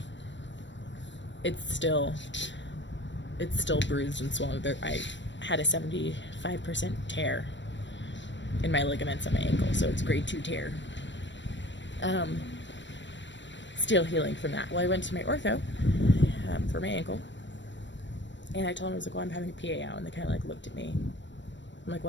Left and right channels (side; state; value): right; late; 0.53 ms